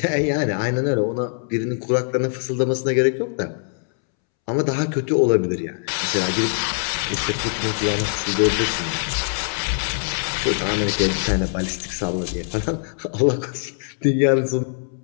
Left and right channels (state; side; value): silent; right; 64 dB below the other